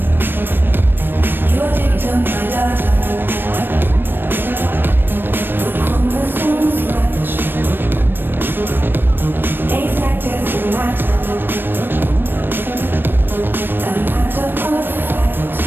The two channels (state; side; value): late; left; 0.096 ms